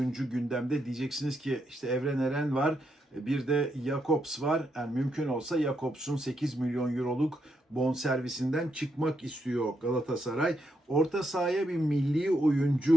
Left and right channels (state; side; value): normal; both; correlation 0.80